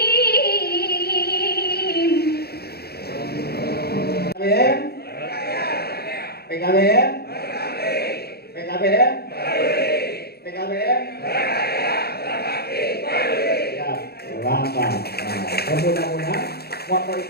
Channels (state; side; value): late; right; 0.46 ms